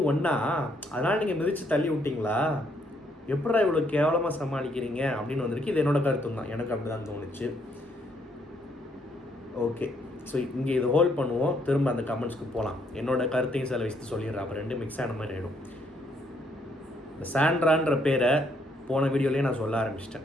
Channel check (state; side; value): normal; both; correlation 0.71